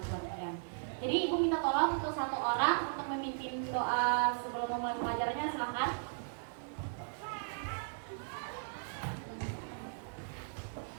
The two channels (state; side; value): silent; left; digital silence